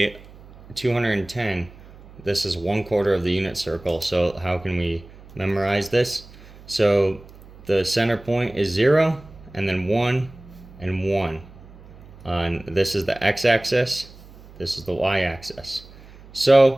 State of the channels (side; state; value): right; noise; hum, 21 dB below the sound